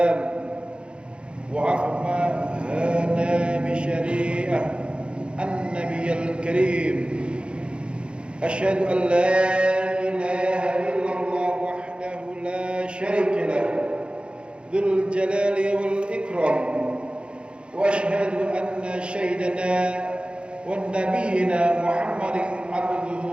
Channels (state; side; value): late; left; 0.056 ms